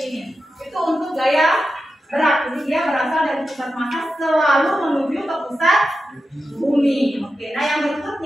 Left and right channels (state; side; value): normal; both; correlation 0.90